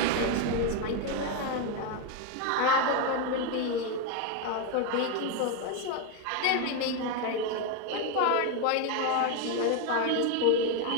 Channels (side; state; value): both; different; correlation 0.02